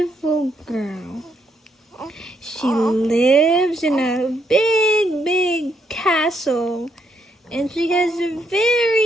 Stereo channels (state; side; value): normal; both; correlation 0.75